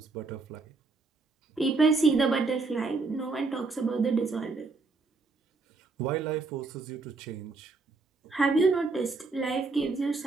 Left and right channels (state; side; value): quieter; left; 3.9 dB